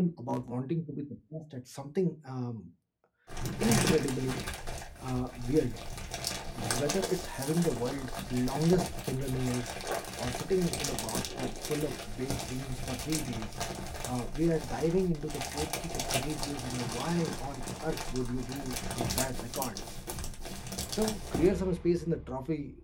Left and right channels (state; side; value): identical; both; correlation 1.00